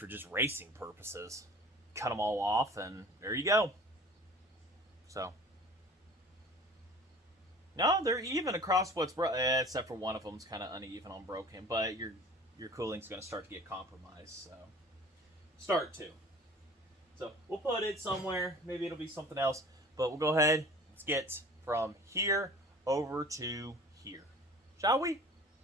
just racing purposes. Cut them all off, and there you go. So. No, they're even across what's except for one of them's kind of uneven on broken, but your cooling's going to start to get compromised. So start to. So we'll put it somewhere. Maybe it'll be something else, but we'll go ahead. Let's get from here over to here, shall we?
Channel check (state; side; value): normal; both; correlation 0.45